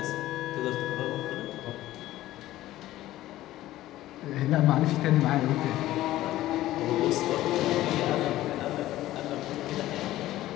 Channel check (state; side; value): quieter; right; 15.2 dB